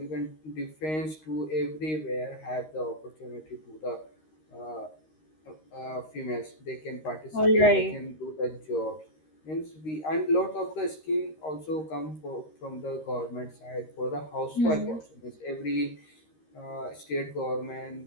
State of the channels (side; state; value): right; late; 13 ms